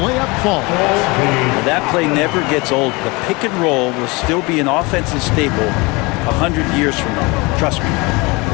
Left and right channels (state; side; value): quieter; right; 25.6 dB